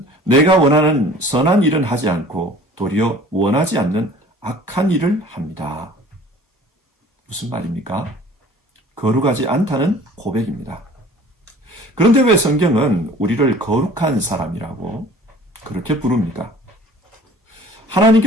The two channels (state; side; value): normal; both; correlation 0.48